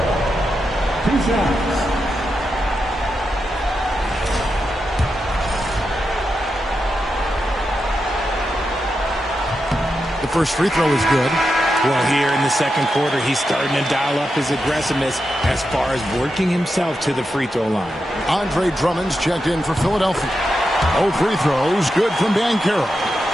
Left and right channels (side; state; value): both; normal; correlation 0.87